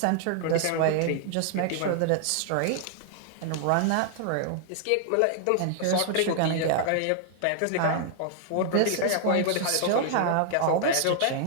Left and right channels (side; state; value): both; different; correlation 0.00